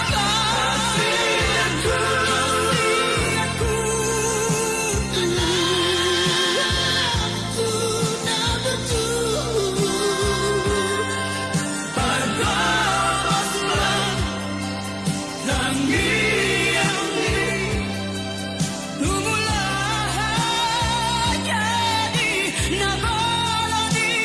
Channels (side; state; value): both; identical; correlation 1.00